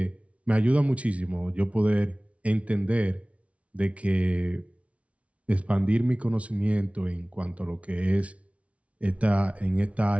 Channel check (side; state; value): left; late; 0.064 ms